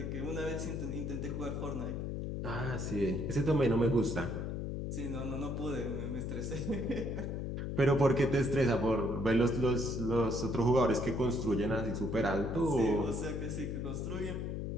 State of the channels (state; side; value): noise; left; hum, 3 dB below the sound